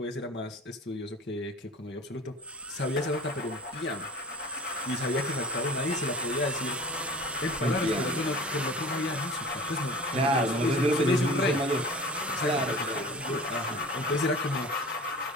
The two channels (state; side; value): normal; both; correlation 0.40